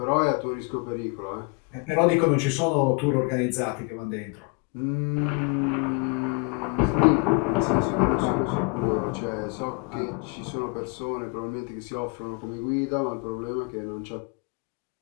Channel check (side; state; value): right; quieter; 30.6 dB